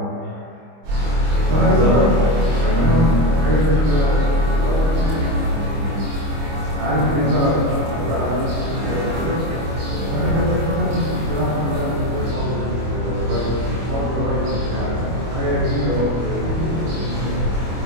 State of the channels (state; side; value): late; left; 25 ms